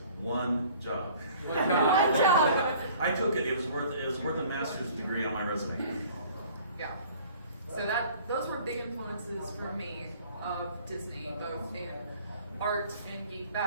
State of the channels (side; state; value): both; inverted; correlation -0.51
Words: One job. One job. I took it. It was worth a master's degree on my resume. Yeah. So those were big influences for me of Disney, both in art and geek